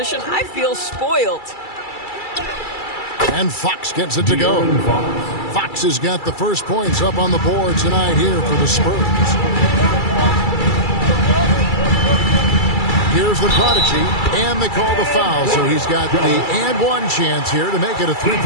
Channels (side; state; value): right; late; 2.3 ms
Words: I feel spoiled. And Fox gets it to go. Fox has got the first points up on the board tonight here for the Spurs. Here's the prodigy, and they call the foul, so he's got the and one chance here to make it a